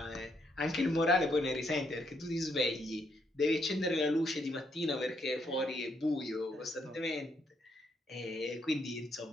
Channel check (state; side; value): normal; both; correlation 0.74